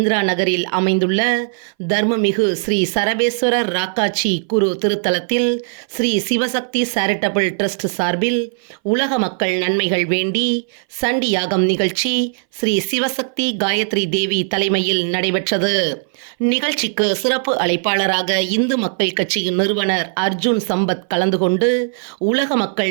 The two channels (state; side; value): silent; left; 61 dB below the other